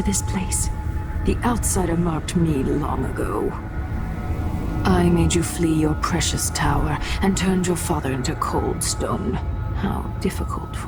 this place? The outsider marked me long ago. I made you flee your precious tower and turned your father into cold stone. How difficult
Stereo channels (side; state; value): both; identical; correlation 1.00